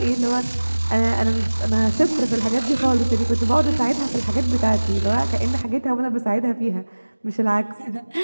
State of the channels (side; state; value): both; inverted; correlation -1.00